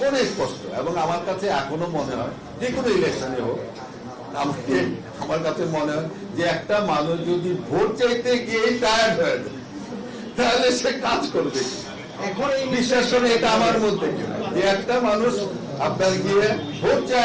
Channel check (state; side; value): identical; both; correlation 1.00